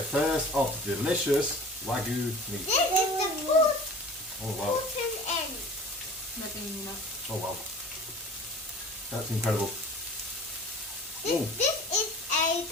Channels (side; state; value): both; normal; correlation 0.42